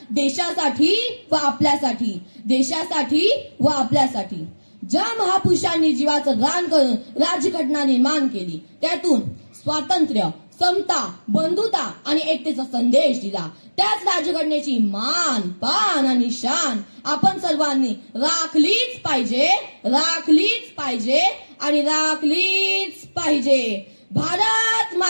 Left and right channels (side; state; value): both; inverted; correlation -1.00